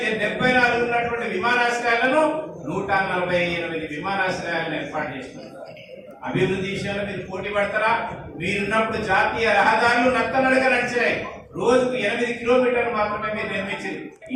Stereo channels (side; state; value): both; identical; correlation 1.00